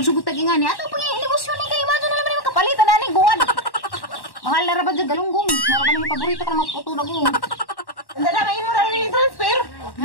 tag ingani. Ato pang negosyo ni kay Imado na naman yung kapalitan na ni guwan. Mahal na rabad dyan galunggong. Naraban yung paborito ka na maputo na gong. Hindi na may mo na rin transfer.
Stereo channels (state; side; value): late; right; 1.1 ms